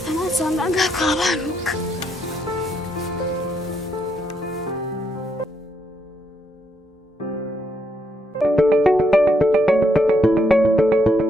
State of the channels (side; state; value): both; normal; correlation 0.76